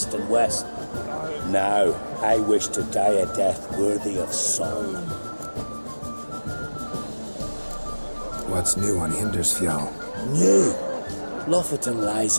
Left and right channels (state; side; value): inverted; both; correlation -1.00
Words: and west. Now, I wish to die a death worthy of song. What's new on Hindersfjall? New! Lofferton lies